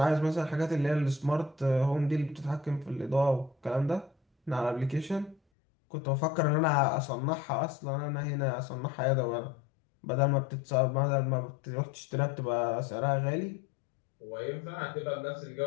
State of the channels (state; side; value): drops out; right; at 5.4 s